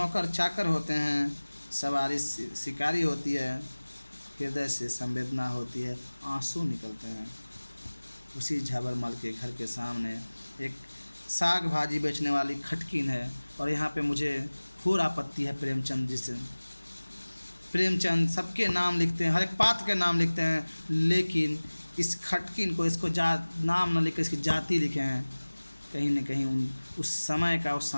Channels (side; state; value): both; inverted; correlation -1.00